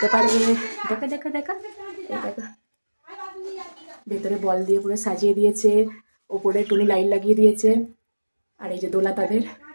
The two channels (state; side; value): inverted; both; correlation -1.00